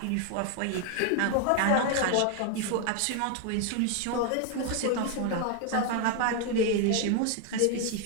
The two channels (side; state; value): both; different; correlation 0.01